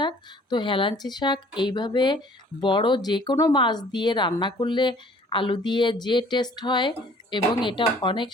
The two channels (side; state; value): both; normal; correlation 0.54